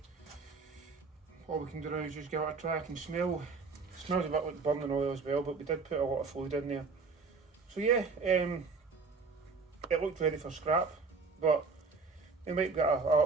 all we can do now is just give it a try. I can smell. It smells a bit like burning oil as well, but we did put a lot of fluid in there. So yeah, it looked ready for scrap, but we might get a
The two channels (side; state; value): left; quieter; 4.4 dB